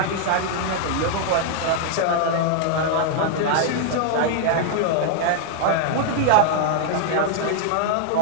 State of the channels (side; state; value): both; different; correlation -0.01